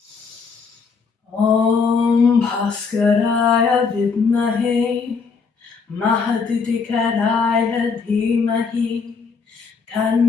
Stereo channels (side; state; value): right; quieter; 5.2 dB